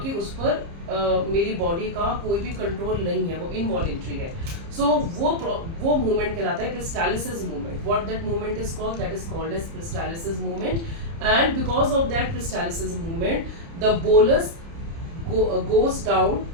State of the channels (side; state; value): left; late; 30 ms